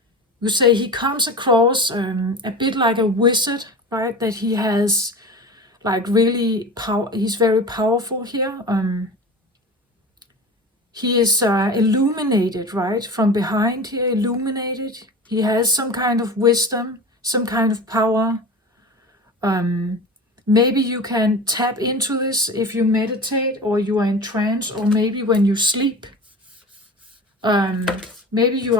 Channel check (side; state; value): both; normal; correlation 0.32